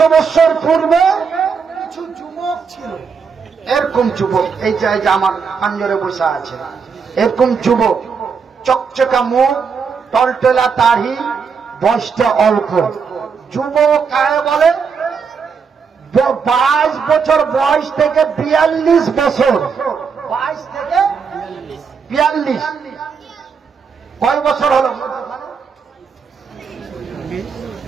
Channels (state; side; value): quieter; left; 5.8 dB